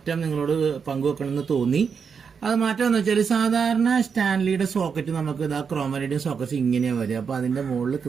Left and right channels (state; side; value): quieter; left; 6.2 dB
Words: നിങ്ങളോട് പങ്കുവെക്കണമെന്ന് തോന്നി. അത് മാറ്റം എന്ന് വെച്ചാൽ സാധാരണ സ്റ്റാൻലിയുടെ സോക്കറ്റ് നമുക്ക് ഇതാ ക്രോമനൈഡിയം സോക്കറ്റ്സ് ഇങ്ങനെയാണ് വരിക. അപ്പൊ അതിന്റെ മുകളിൽ